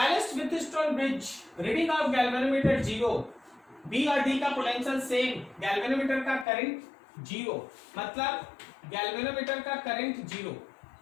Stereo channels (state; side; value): drops out; right; at 6.5 s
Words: Wheatstone bridge, reading of galvanometer 0, B और डी का पोटेंशियल सेम, गैल्वेनोमीटर का करंट 0, मतलब गैल्वेनोमीटर का करंट 0।